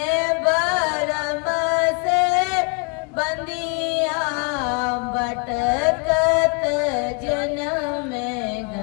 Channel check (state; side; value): quieter; right; 34.4 dB